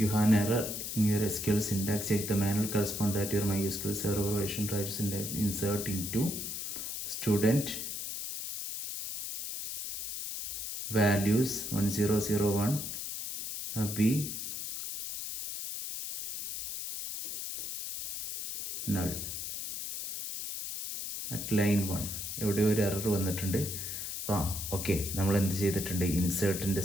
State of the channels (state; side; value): noise; left; hiss, 5 dB below the sound